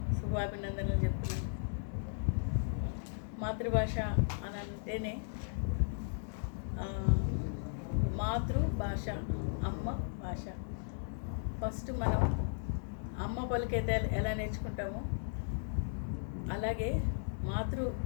శుభాభినందనలు చెప్తున్నాను. మాతృభాష అని అంటేనే మాతృభాష, అమ్మ భాష. ఫస్ట్ మనం అమ్మ పలికైతే ఎలా నేర్చుకుంటామో అలాగే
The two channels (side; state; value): right; silent; digital silence